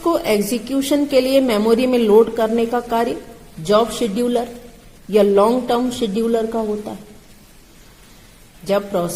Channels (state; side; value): identical; both; correlation 1.00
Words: एग्जीक्यूशन के लिए मेमोरी में लोड करने का कार्य जॉब शेड्यूलर या लॉन्ग टर्म शेड्यूलर का होता है। जब